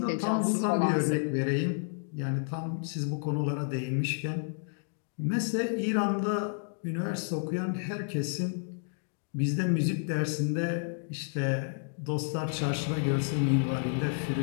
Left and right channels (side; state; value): right; silent; digital silence